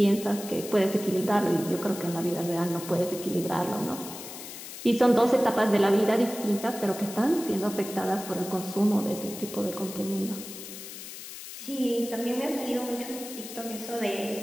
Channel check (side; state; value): left; noise; hiss, 11 dB below the sound